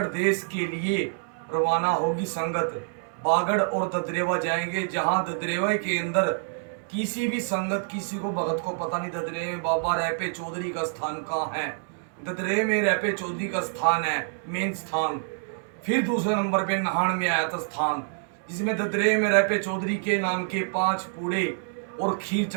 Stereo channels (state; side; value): silent; left; digital silence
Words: देश के लिए रवाना होगी संगत। बागड़ और ददरेवा जाएंगे, जहाँ ददरेवा के अंदर किसी भी संगत किसी को भगत को पता नहीं ददरे में बाबा रैपे चौधरी का स्थान कहाँ है। ददरे में रैपे चौधरी का स्थान है मेन स्थान। फिर दूसरे नंबर पे नहान में आया था स्थान, जिसमें ददरे में रैपे चौधरी के नाम के 5 पूड़े और खीर